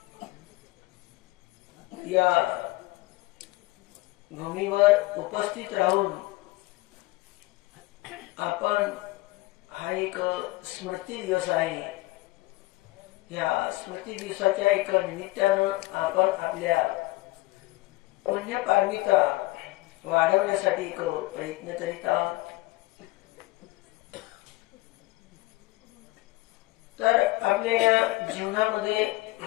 या भूमीवर उपस्थित राहून आपण हा एक स्मृती दिवस आहे. या स्मृती दिवसाच्या एक निमित्तानं आपण आपल्या पुण्यपारमिता वाढवण्यासाठी एक प्रयत्न करीत आहोत. तर आपल्या या जीवनामध्ये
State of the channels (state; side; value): quieter; right; 20.5 dB